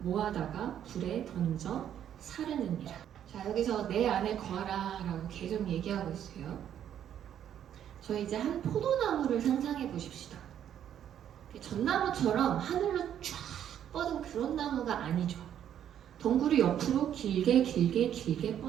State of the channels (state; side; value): quieter; left; 10.0 dB